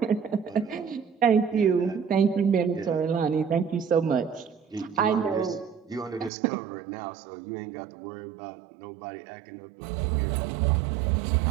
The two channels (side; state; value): left; drops out; at 6.3 s